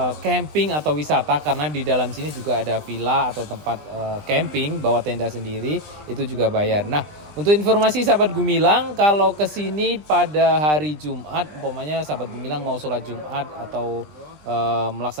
camping atau wisata, karena di dalam sini juga ada villa atau tempat camping bawa tenda sendiri, itu juga bayar. Nah, untuk informasi sahabat Gumilang, kalau ke sini pada hari Jumat, umpamanya sahabat Gumilang mau sholat Jumat atau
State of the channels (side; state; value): left; late; 20 ms